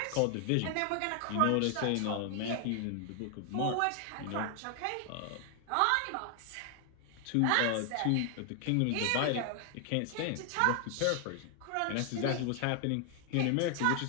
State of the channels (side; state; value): both; different; correlation 0.00